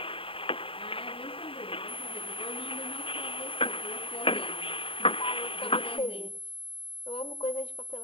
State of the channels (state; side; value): late; right; 0.26 ms